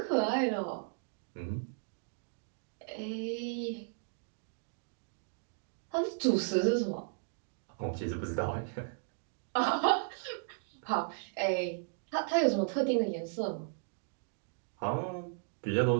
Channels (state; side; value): silent; left; digital silence